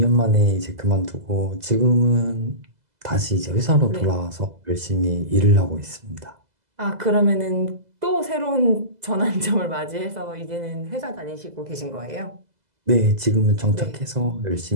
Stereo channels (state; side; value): late; left; 2.0 ms